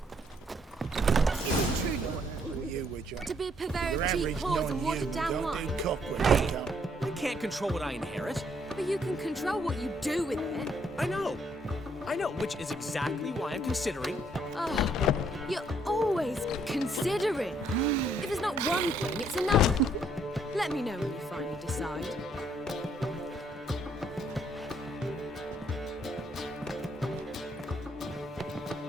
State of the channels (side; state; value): both; normal; correlation 0.69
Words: To be a Your Bavarian average cheap whores and non-you watered down don't wine. do cockroach cup. I can't control what I inherit. But you can control what you do with it. I know, which is exactly why I'm considering. Oh, you're always considering. If it's not one thing, it's another. Let me know when you finally decide.